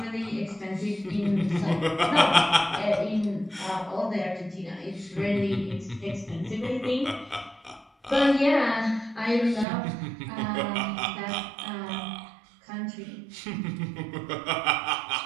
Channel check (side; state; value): left; drops out; at 9.7 s